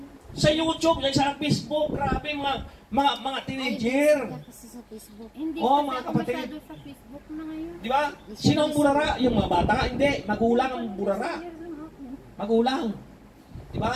Sa YouTube, sa Facebook, grabe mga teenager. Ay, kasi sa Facebook. Hindi Oh, kasi mga ako kapatid. masyado sa Facebook na ngayon. Di ba? Sino ang burara? Yung mga bata? Hindi. Magulang ang burara. Magulang. Di ba?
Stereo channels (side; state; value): both; identical; correlation 1.00